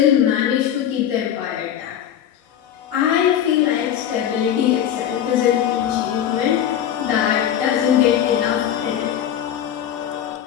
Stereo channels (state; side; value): quieter; right; 10.1 dB